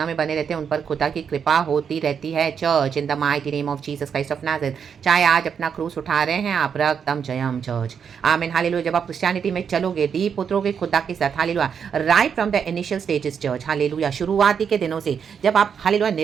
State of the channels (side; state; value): left; quieter; 7.1 dB